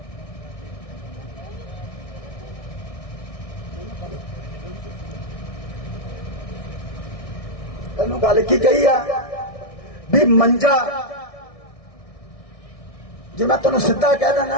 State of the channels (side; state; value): right; late; 1.6 ms